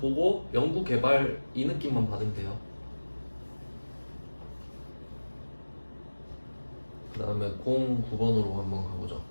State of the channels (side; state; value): both; inverted; correlation -1.00